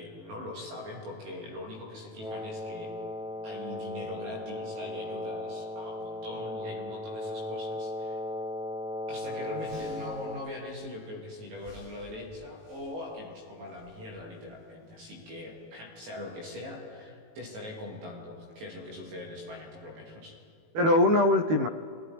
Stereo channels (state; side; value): late; left; 18 ms